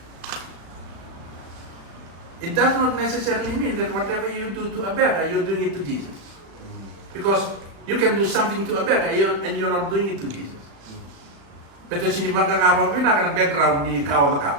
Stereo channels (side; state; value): left; late; 35 ms